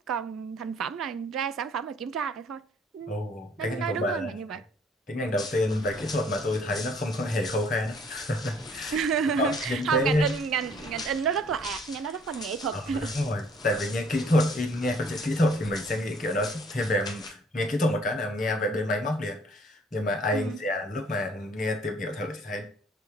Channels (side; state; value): both; normal; correlation 0.59